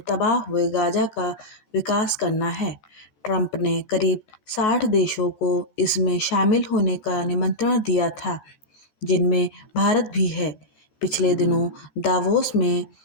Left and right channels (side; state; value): right; late; 14 ms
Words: तबाह हुए गाजा का विकास करना है। ट्रंप ने करीब 60 देशों को इसमें शामिल होने का निमंत्रण दिया था, जिनमें भारत भी है। पिछले दिनों दावोस में